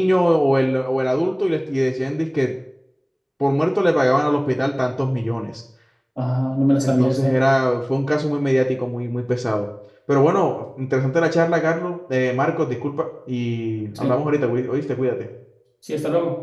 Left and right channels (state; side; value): identical; both; correlation 1.00